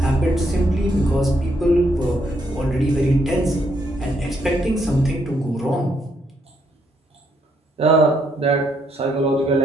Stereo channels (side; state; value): both; normal; correlation 0.74